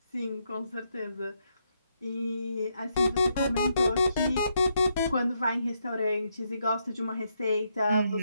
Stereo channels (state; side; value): inverted; both; correlation -0.79